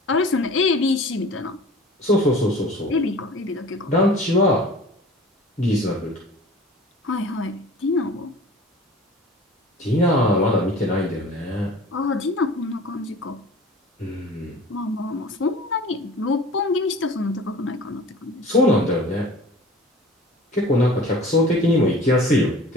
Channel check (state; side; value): normal; both; correlation 0.43